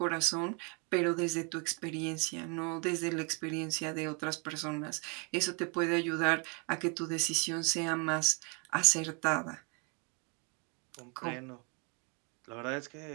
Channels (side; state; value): left; quieter; 34.0 dB